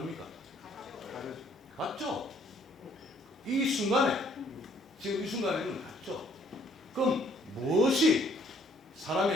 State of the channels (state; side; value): normal; both; correlation 0.63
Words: 같죠? 이 순간에, 지금 이 순간에는 같죠? 그럼 무엇이